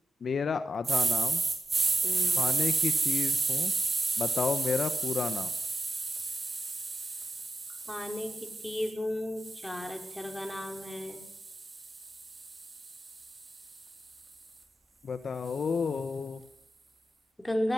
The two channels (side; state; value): both; normal; correlation 0.89